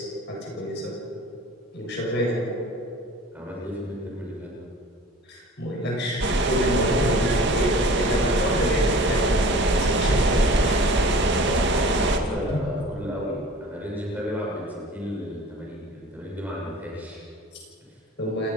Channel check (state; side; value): normal; both; correlation 0.44